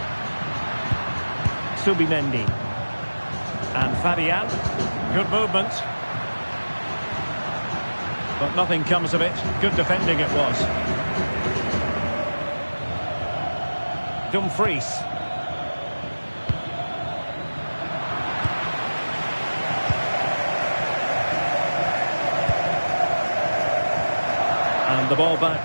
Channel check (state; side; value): inverted; both; correlation -1.00